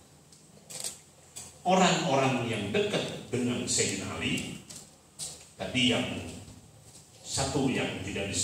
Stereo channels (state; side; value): identical; both; correlation 1.00